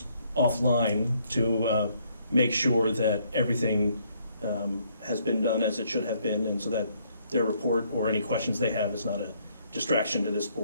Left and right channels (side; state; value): both; inverted; correlation -0.68